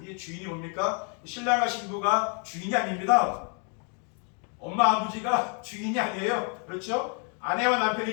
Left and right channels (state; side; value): quieter; right; 39.1 dB